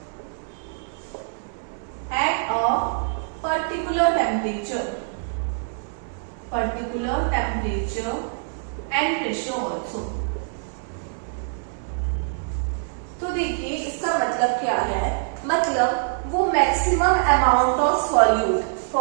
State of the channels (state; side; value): silent; left; digital silence